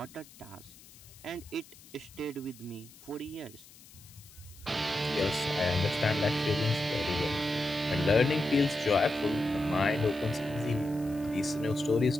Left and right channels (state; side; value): noise; left; hiss, 22 dB below the sound